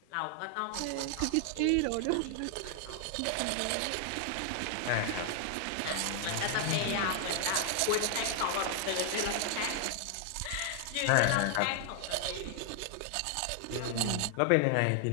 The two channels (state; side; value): different; both; correlation 0.00